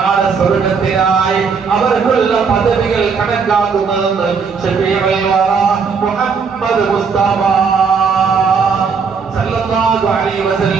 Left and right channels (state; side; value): quieter; left; 5.6 dB